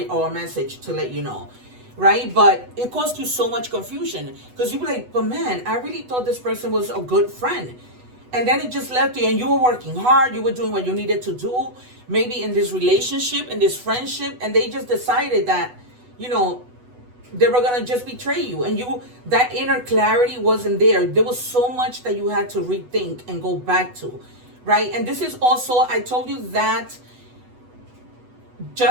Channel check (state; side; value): late; left; 8.1 ms